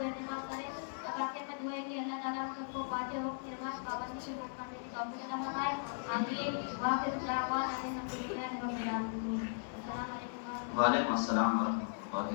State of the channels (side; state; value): right; silent; digital silence